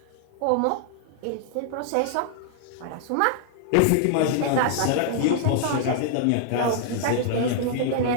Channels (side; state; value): both; different; correlation 0.00